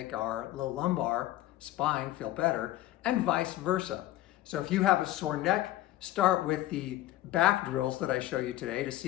our low lumbar spine feel better, and vice versa. So if you have a sore neck, start with the back drills that I show you today to see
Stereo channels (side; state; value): right; quieter; 15.3 dB